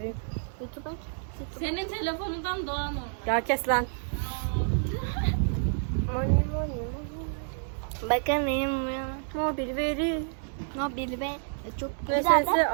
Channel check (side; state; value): left; silent; digital silence